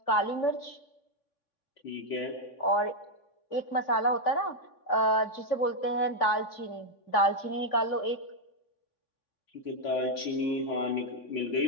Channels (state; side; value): late; right; 3.5 ms